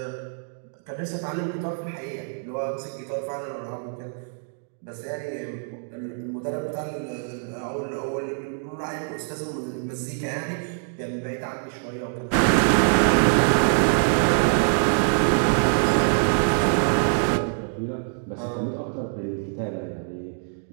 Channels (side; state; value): left; silent; digital silence